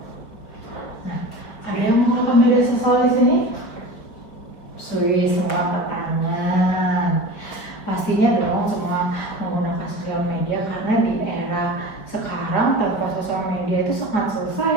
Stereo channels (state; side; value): late; right; 4.9 ms